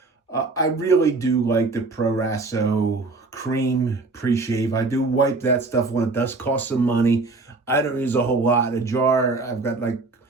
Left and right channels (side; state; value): left; quieter; 3.6 dB